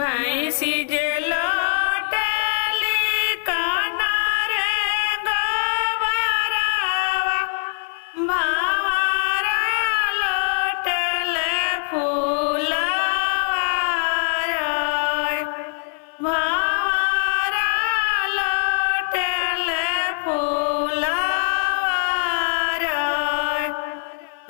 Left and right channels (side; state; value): right; silent; 56 dB below the other